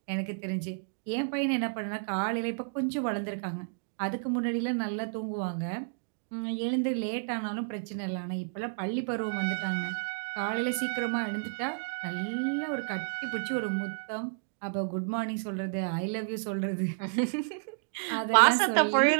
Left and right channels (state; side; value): silent; left; digital silence